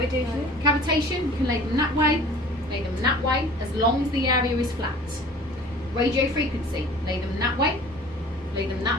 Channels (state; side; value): normal; both; correlation 0.45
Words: Cavitation, you can lay them that way, lay them that way, as long as the area is flat. Radio frequency, lay them that way,